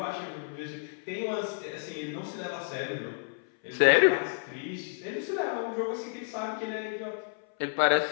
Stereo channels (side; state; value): right; silent; 57 dB below the other